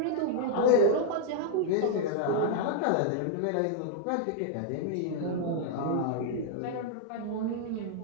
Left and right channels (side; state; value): both; different; correlation -0.01